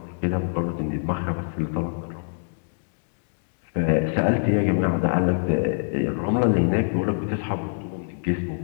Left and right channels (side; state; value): right; silent; digital silence